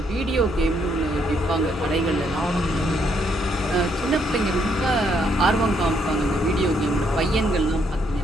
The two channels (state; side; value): normal; both; correlation 0.73